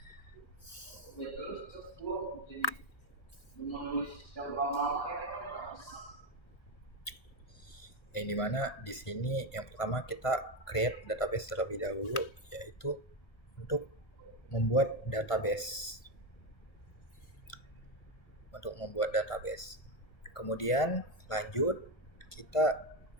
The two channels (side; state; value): right; late; 1.5 ms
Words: Yang dimana di sini yang pertama kita create database terlebih dahulu, yaitu untuk membuat database. Kemudian lanjut kita